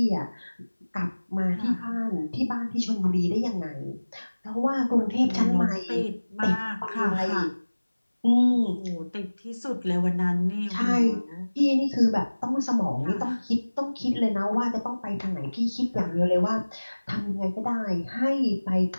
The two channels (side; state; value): both; inverted; correlation -1.00